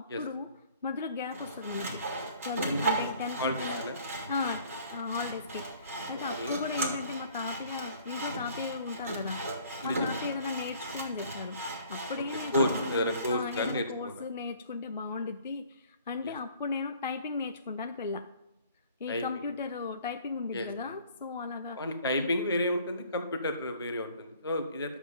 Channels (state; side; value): inverted; both; correlation -0.54